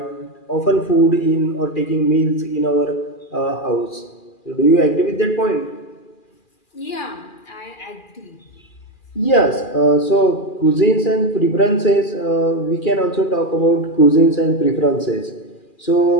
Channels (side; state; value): right; late; 2.4 ms